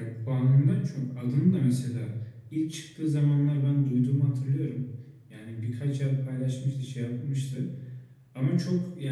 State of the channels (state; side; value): identical; both; correlation 1.00